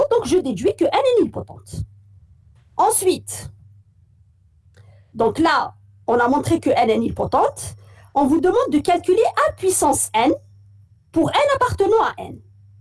donc je déduis que n est nilpotente. Ensuite, donc là, on a montré que n est nilpotente. On vous demande de calculer a puissance n pour n appartenant à n.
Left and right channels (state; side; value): identical; both; correlation 1.00